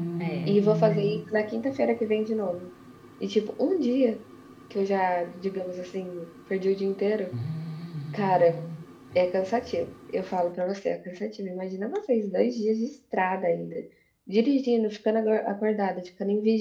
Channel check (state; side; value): identical; both; correlation 1.00